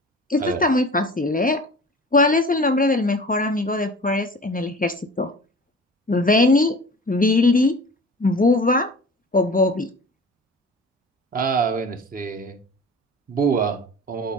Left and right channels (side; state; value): both; normal; correlation 0.41